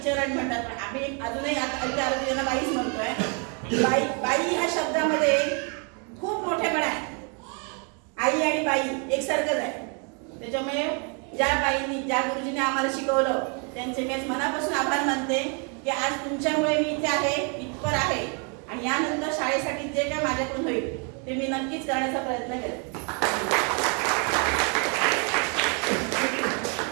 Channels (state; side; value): quieter; left; 37.0 dB